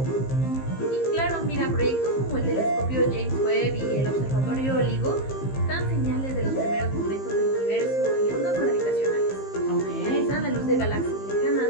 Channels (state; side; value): late; right; 15 ms